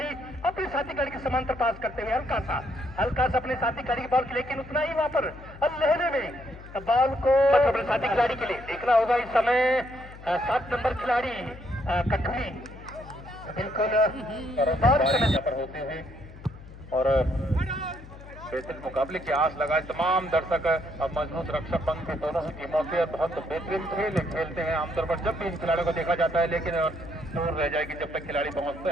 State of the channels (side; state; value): left; noise; hum, 17 dB below the sound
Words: अपने साथी खिलाड़ी के समांतर पास करते हुए हल्का सा अपने साथी खिलाड़ी की बॉल, लेकिन उतना ही वहां पर लहरे में बॉल को अपने साथी खिलाड़ी के लिए देखना होगा। इस समय 7 नंबर खिलाड़ी कठुली बिल्कुल पर होते हुए और बेहतरीन मुकाबले की आस लगाए तमाम दर्शक। अब मजबूत रक्षक पंख थे दोनों ही टीमों के, बहुत बेहतरीन खेल खेलते हैं आमतौर पर जब भी इन खिलाड़ियों को देखा जाता है, लेकिन दूर रह जाएगी जब तक खिलाड़ी पहुंचते